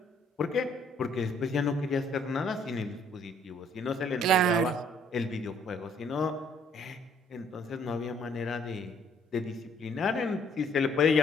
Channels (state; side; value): normal; both; correlation 0.63